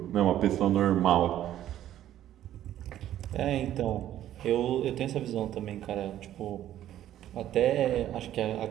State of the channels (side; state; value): left; quieter; 12.1 dB